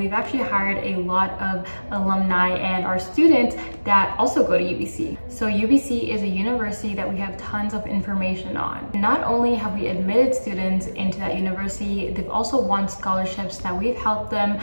actually hired a lot of alumni and our students that also go to UBC. So UBC is a university that we have tons of information on. Not only have we admitted students into that university, they've also won scholarships that we've helped them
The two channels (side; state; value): both; inverted; correlation -1.00